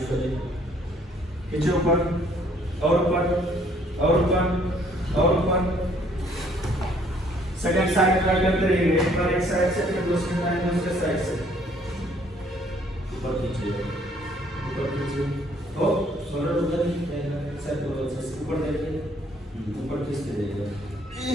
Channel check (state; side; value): normal; both; correlation 0.62